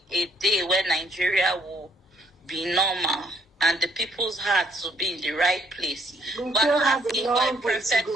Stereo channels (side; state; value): both; normal; correlation 0.67